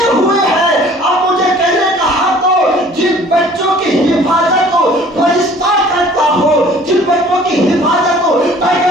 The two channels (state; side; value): normal; both; correlation 0.51